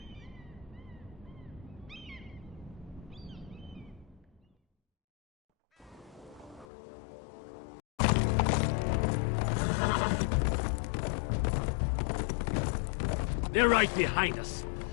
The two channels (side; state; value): right; drops out; at 6.7 s